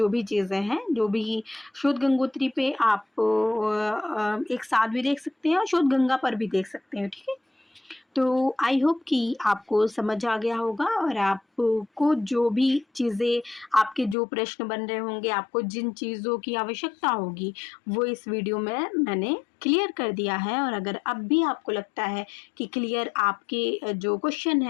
भी चीज़ें हैं। जो भी शोध गंगोत्री पे आप एक साथ भी देख सकते हैं और शोध गंगा पर भी देख सकते हैं। ठीक है, तो आई होप कि आपको समझ आ गया होगा और आपको जो भी चीज़ें, आपके जो प्रश्न बन रहे होंगे, आपको जिन चीज़ों की आवश्यकता होगी वो इस वीडियो में मैंने क्लियर कर दिया है। और अगर अब भी आपको लगता है कि क्लियर आपके जो क्वेश्चन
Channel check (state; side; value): drops out; right; at 14.2 s